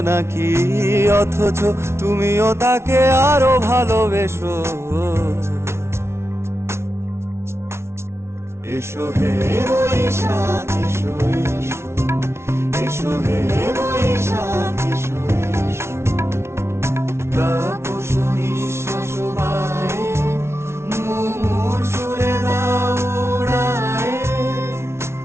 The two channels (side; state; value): left; late; 0.13 ms